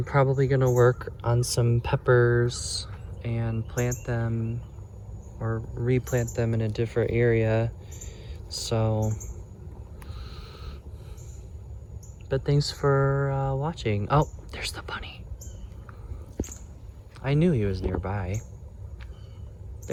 probably gonna work on some peppers and plant them or replant them in a different area. So, but thanks for watching. Oh, there's the bunny. I knew he was nearby.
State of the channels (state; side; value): identical; both; correlation 1.00